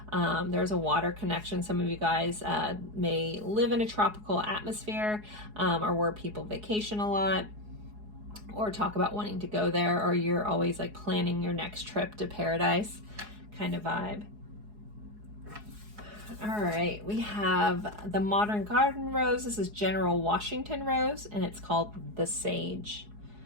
There's a water connection. Some of you guys may live in a tropical atmosphere, or where people vacation a lot, or talk about wanting to go there, or you're always like planning your next trip to paradise kind of vibe. All right, we have the Modern Garden Rose. This is General Washington Rose, and it's called the Sage.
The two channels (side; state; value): left; late; 4.8 ms